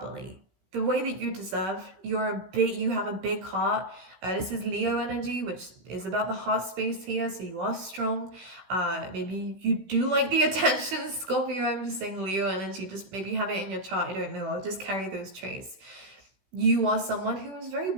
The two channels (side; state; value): left; late; 16 ms